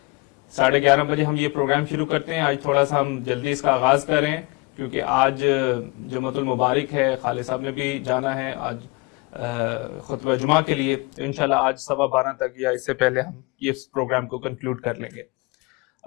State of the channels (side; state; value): right; quieter; 27.1 dB